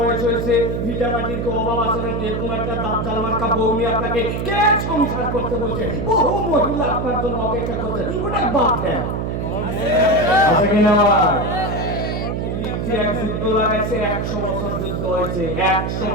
হয়েছে, ভিটা মাটির কি অভাব আছে নাকি? এরকম একটা দাজ্জাল মার্কা বউ নিয়ে আপনাকে কে সংসার করতে বলছে? বহু মহিলা আপনার জন্য অপেক্ষা করছে, ওটা বাদ দেন। আছে কিনা? এক যুদ্ধ লাগাইছে, 100 বছর যুদ্ধ হয়েছে, 100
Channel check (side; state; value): right; noise; hum, 2 dB below the sound